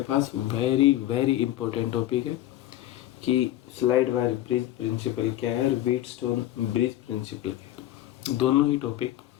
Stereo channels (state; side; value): quieter; right; 13.9 dB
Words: वेरी वेरी इंपॉर्टेंट टॉपिक है कि स्लाइड वायर ब्रिज प्रिंसिपल क्या है और व्हीटस्टोन ब्रिज प्रिंसिपल क्या है, दोनों ही टॉपिक